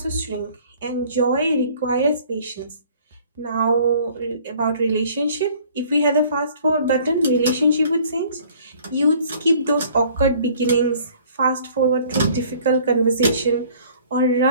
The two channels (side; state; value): both; inverted; correlation -0.54